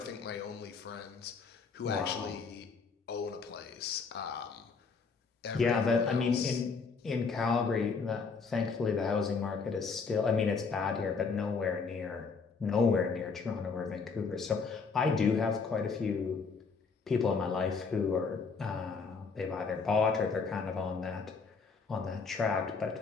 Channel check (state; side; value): quieter; right; 4.9 dB